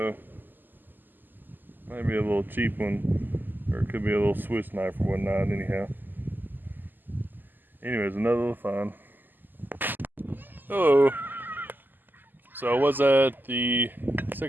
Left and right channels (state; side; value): late; left; 0.089 ms